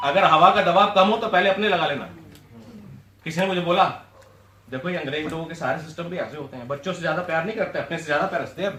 अगर हवा का दबाव कम हो तो पहले अपने लगा लेना। किसी ने मुझे बोला देखो ये अंग्रेज लोगों के सारे सिस्टम भी ऐसे होते हैं, बच्चों से ज्यादा प्यार नहीं करते, अपने से ज्यादा प्यार रखते हैं,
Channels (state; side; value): identical; both; correlation 1.00